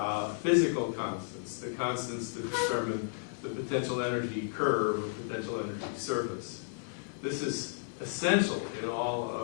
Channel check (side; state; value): right; silent; 56 dB below the other